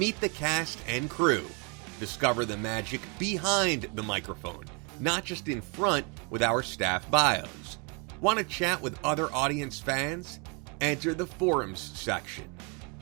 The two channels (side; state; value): left; quieter; 33.5 dB